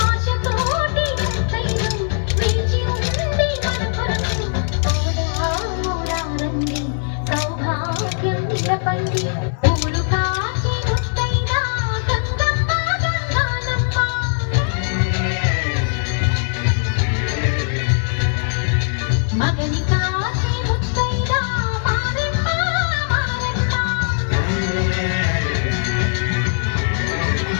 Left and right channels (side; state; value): right; silent; 66 dB below the other